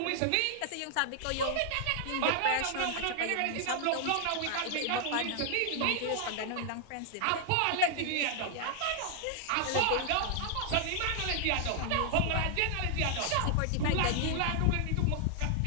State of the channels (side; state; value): both; different; correlation 0.00